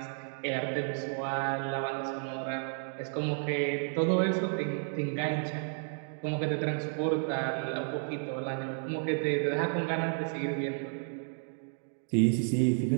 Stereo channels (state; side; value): silent; left; 56 dB below the other